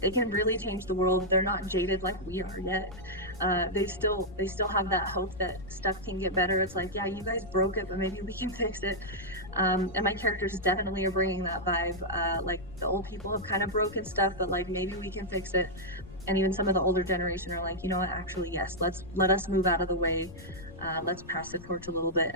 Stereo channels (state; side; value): noise; left; rumble, 16 dB below the sound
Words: really change the world. They're not jaded like we are yet. They still have that hope that stuff can get better. It's like, yeah, you guys broke it, but maybe we can fix it. And my characters definitely are bringing that vibe. Like, the old people have kind of broken stuff, but like, maybe we can fix it. And even some of the older generation are like, you know what, actually, yes, let us move out of the way. Let's pass the torch a little bit